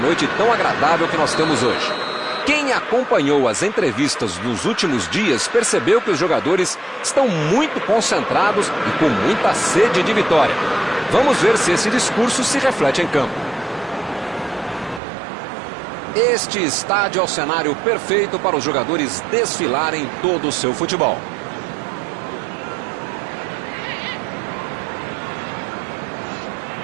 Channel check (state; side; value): drops out; left; at 15.0 s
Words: tão agradável que nós temos hoje. Quem acompanhou as entrevistas dos últimos dias percebeu que os jogadores estão muito concentrados e com muita sede de vitória. Vamos ver se esse discurso se reflete em campo. Este estádio é o cenário perfeito para os jogadores desfilarem todo o seu futebol.